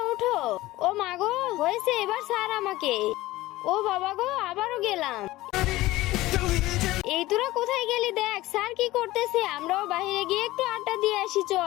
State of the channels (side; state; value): right; quieter; 17.7 dB